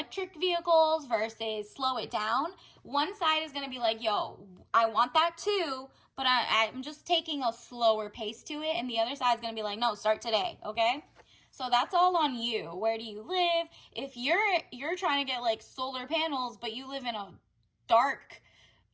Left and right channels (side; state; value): both; identical; correlation 1.00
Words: vehicles versus slow it down, one side is going to be like, yo, I want that too, but I'm just taking a slower pace to it. And the other side is going to be like, no, start today. Okay. So that's all on you. Where do you live? If you're trying to get like solar panels, but you live in a dark